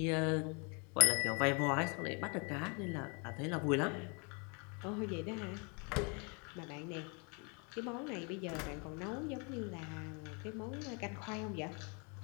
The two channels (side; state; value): right; quieter; 33.8 dB